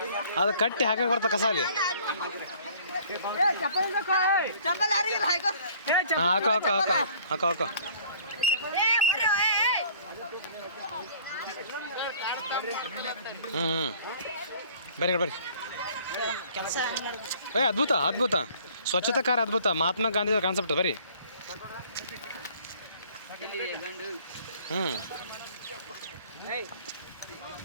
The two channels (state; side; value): inverted; both; correlation -0.54